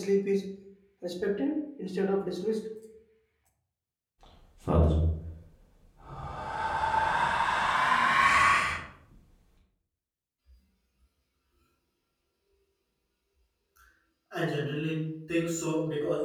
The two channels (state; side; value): identical; both; correlation 1.00